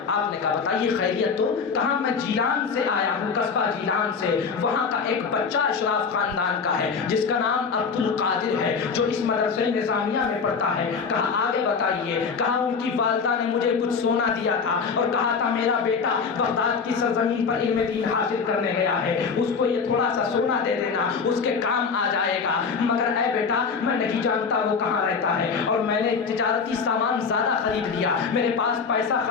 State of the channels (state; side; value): quieter; right; 5.5 dB